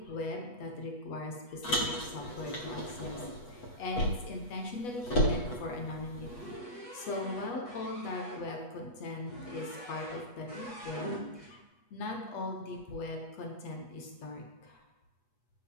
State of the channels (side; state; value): right; late; 8.2 ms